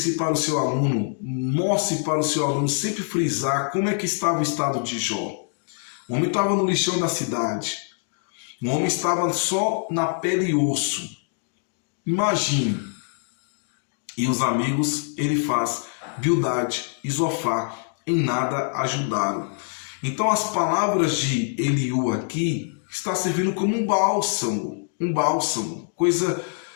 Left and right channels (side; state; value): right; silent; 61 dB below the other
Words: para o seu aluno, mostre para o seu aluno sempre frisar como é que estava o estado de Jó. O homem estava no lixão da cidade. O homem estava só na pele e osso. Imagine. E os amigos, ele faz Bildade e Zofar em nada ajudaram. Então as palavras de Eliú aqui está servindo como um bálsamo,